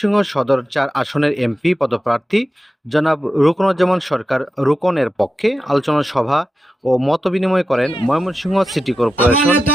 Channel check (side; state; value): both; normal; correlation 0.91